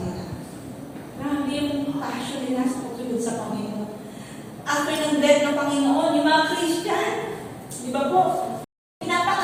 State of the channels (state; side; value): identical; both; correlation 1.00